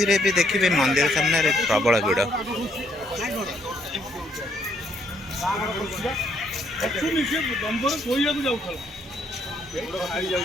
रे भी देखिए मंदिर सामने रे प्रबल भिड़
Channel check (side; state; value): both; normal; correlation 0.70